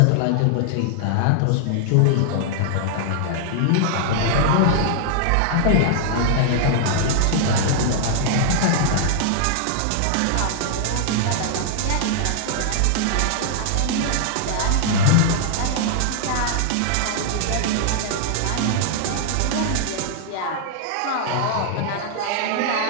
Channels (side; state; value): both; different; correlation -0.01